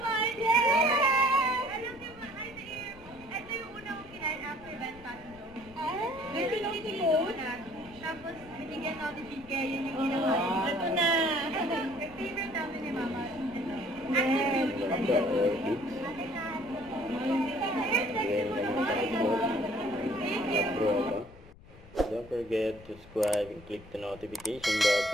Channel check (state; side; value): noise; left; rumble, 21 dB below the sound